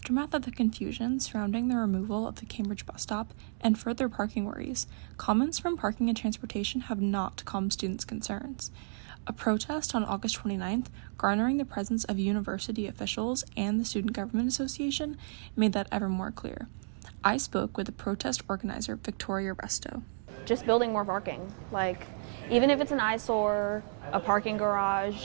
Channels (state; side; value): silent; left; digital silence